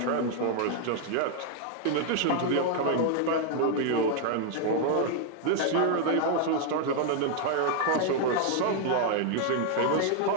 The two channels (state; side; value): different; both; correlation 0.00